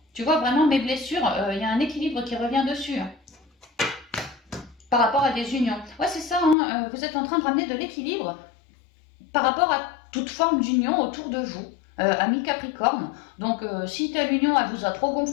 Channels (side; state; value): right; drops out; at 6.6 s